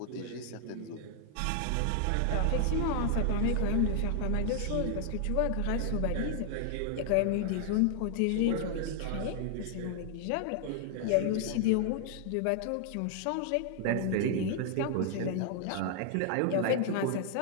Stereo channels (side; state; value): both; different; correlation 0.00